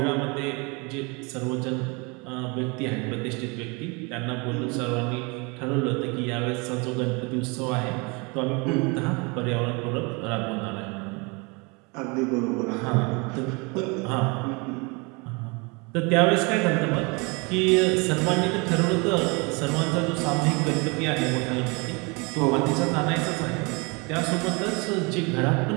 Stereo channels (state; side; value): quieter; left; 29.5 dB